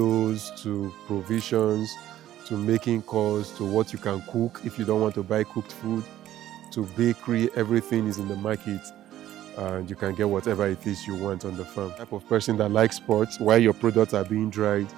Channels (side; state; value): left; quieter; 12.9 dB